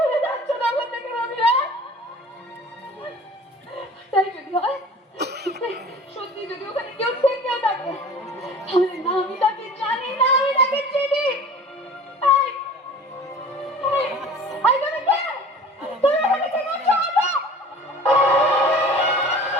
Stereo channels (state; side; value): normal; both; correlation 0.42